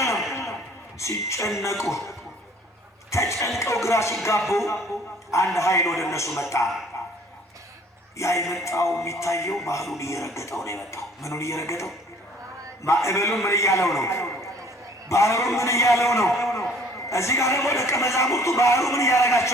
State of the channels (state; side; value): normal; both; correlation 0.55